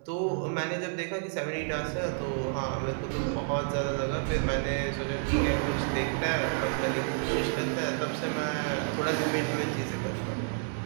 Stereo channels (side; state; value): left; silent; 58 dB below the other